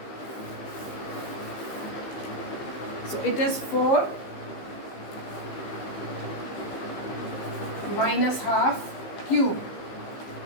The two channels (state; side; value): late; right; 15 ms